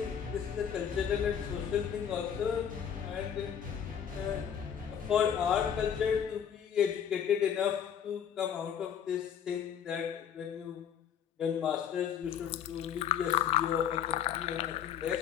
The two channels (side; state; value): right; quieter; 8.5 dB